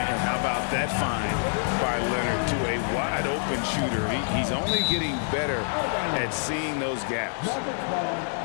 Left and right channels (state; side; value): silent; right; digital silence